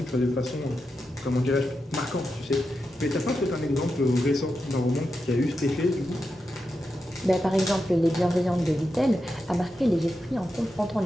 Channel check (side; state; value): both; normal; correlation 0.88